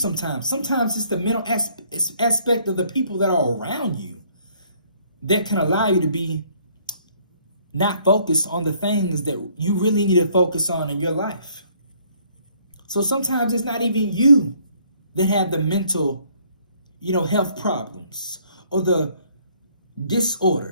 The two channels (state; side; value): inverted; both; correlation -0.63